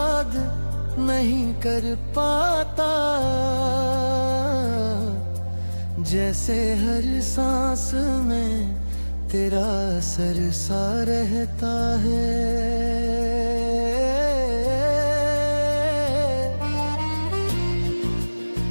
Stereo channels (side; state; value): both; inverted; correlation -1.00